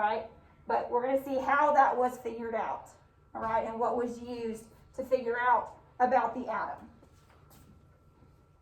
But we're going to see how that was figured out, all right, and what was used to figure out about the atom.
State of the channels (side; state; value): both; identical; correlation 1.00